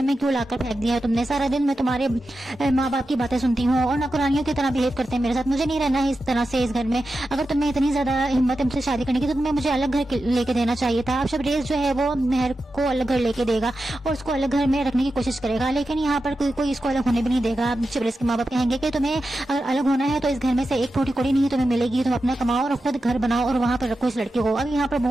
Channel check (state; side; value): normal; both; correlation 0.91